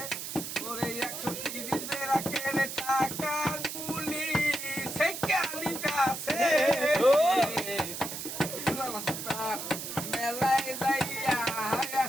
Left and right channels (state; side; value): noise; right; hiss, 7 dB below the sound